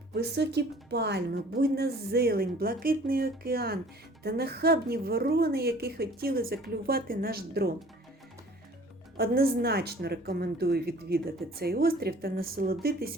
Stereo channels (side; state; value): both; normal; correlation 0.50